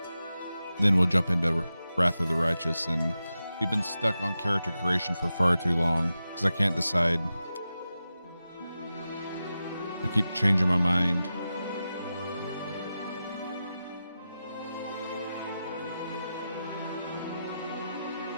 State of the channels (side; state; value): both; inverted; correlation -0.91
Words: then we'll jump into Wrath of the Righteous. And we've been stuck on character creation for far too long because I can't decide. I keep changing my mind.